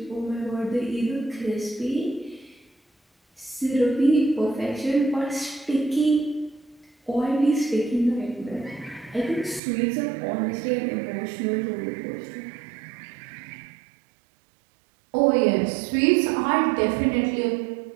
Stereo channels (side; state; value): left; drops out; at 9.6 s